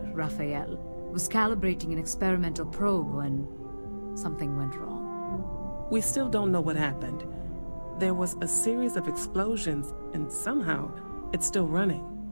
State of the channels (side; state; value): both; inverted; correlation -1.00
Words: Rafael, was calibrating an experimental probe when something went wrong. We still don't know what happened. There was a series of explosions, and somehow it's still running.